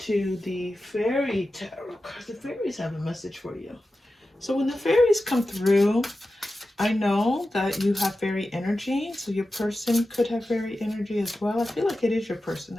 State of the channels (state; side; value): normal; both; correlation 0.93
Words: the Fairy Tarot cards. The fairies have a message for you. So when the fairies come through, I know that you have fairy energy. So your person could have fairy energy as well. I feel like it is your person